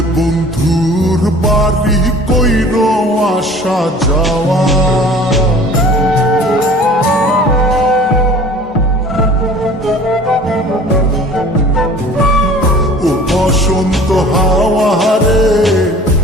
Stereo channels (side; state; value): both; normal; correlation 0.46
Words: বন্ধুর বাড়ি কইর আসা যাওয়া। ও বসন্ত হাওয়া রে,